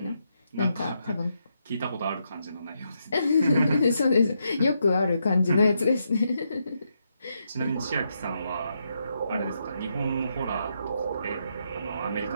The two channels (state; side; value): inverted; both; correlation -0.81